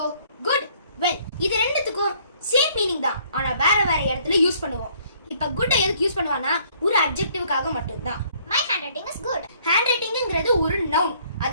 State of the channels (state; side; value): inverted; both; correlation -0.62